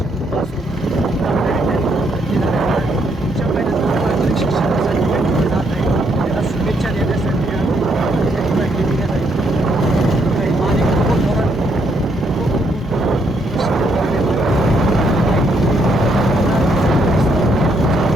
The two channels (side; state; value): both; normal; correlation 0.73